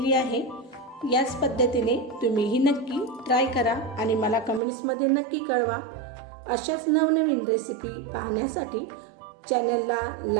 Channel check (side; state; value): left; drops out; at 4.6 s